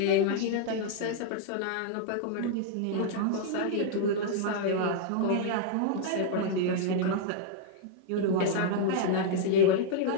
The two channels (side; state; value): both; different; correlation -0.01